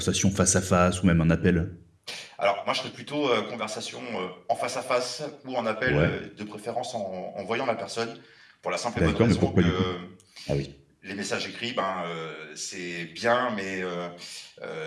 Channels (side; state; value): both; identical; correlation 1.00